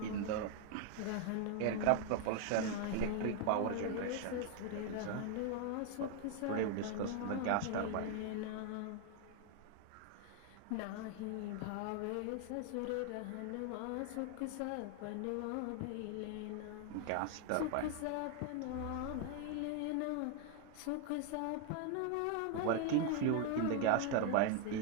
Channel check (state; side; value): different; both; correlation 0.00